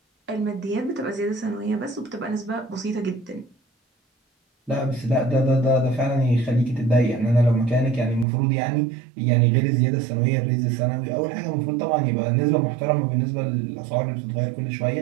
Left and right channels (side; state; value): left; drops out; at 8.2 s